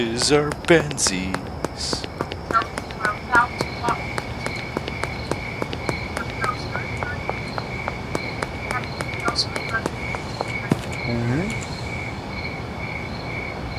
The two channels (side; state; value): both; identical; correlation 1.00